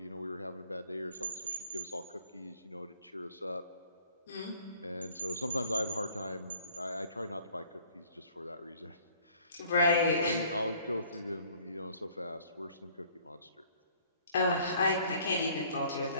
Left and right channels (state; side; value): inverted; both; correlation -0.57